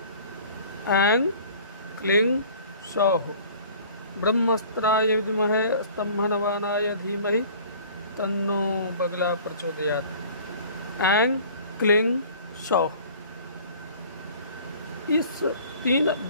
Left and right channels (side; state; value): both; inverted; correlation -0.48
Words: ऐंग क्लिंग शौ ब्रह्मास्त्राय विद्महे स्तंभनवानाय धीमहि तन्नो बगला प्रचोदयात्। ऐंग क्लिंग शौ, इस 3